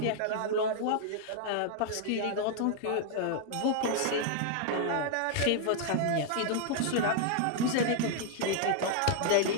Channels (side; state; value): both; different; correlation 0.00